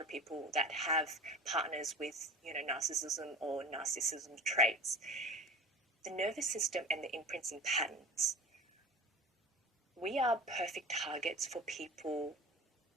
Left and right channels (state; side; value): normal; both; correlation 0.36